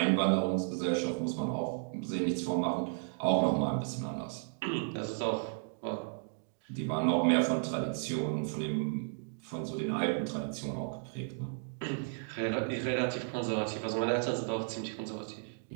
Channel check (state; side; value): silent; left; digital silence